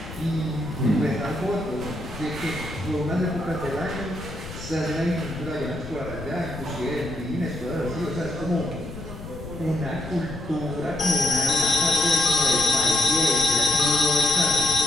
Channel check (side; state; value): left; noise; rumble, 12 dB below the sound